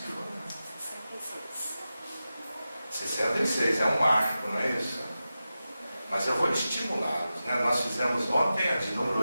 foram? 66, é um marco, não é isso? Mas eu vou estimulá-los, né? Nós fizemos ontem a de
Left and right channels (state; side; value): inverted; both; correlation -0.93